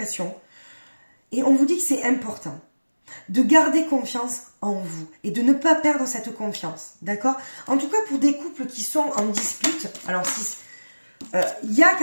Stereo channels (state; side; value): inverted; both; correlation -1.00